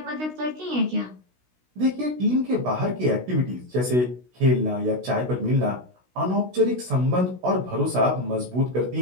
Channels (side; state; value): left; late; 16 ms